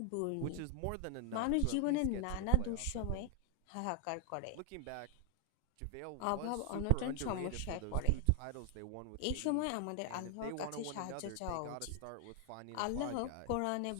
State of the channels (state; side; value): different; both; correlation 0.00